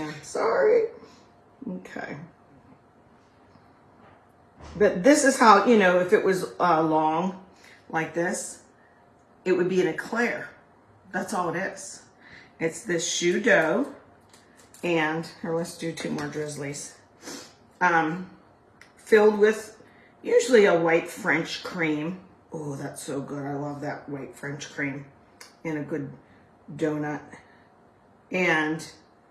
Sorry. Okay. But this is how, you know, if it was long like this, it would be an eclair. That's all it is. It's this shoe dough. And, here, let's do 2 more drizzlies. Filled with usually a white French cream. Oh, that's so good. I love that white French cream in a good donut. And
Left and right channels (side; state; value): both; identical; correlation 1.00